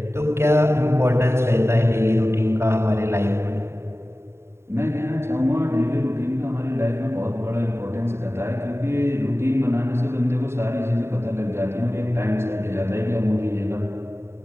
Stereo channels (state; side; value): late; left; 0.12 ms